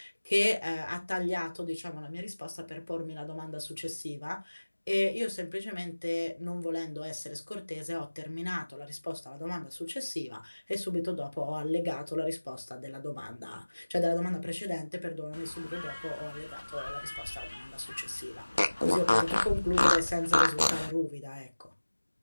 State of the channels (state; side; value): inverted; both; correlation -1.00